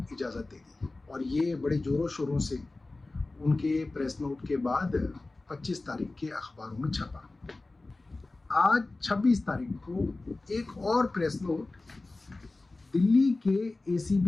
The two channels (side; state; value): right; quieter; 3.2 dB